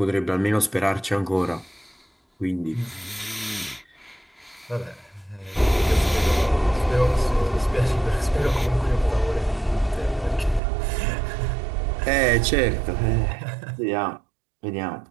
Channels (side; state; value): left; drops out; at 10.6 s